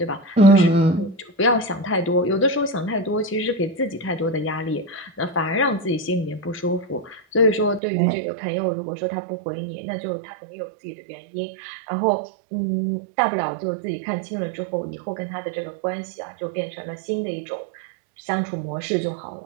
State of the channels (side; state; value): left; drops out; at 7.8 s